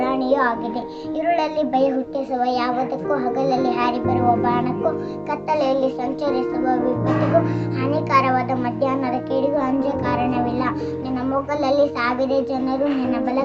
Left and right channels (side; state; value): both; identical; correlation 1.00